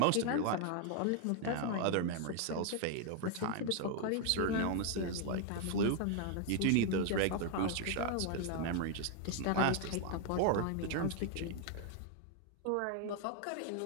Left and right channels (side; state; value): both; different; correlation 0.00